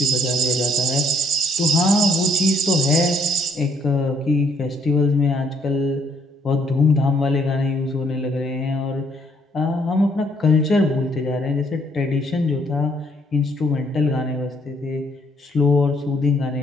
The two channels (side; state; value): both; normal; correlation 0.67